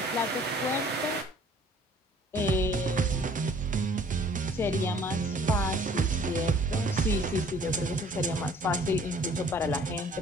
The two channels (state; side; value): normal; both; correlation 0.55